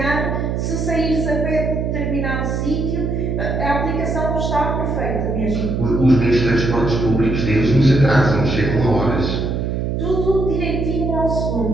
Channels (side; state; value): right; noise; hum, 1 dB below the sound